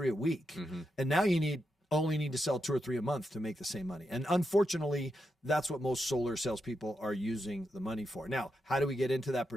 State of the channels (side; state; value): both; normal; correlation 0.85